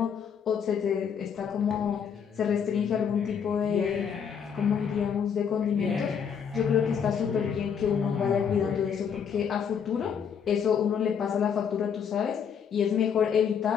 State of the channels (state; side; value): quieter; right; 7.3 dB